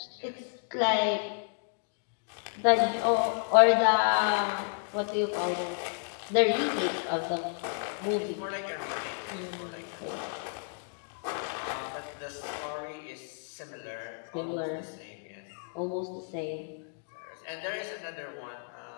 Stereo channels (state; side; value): silent; right; 57 dB below the other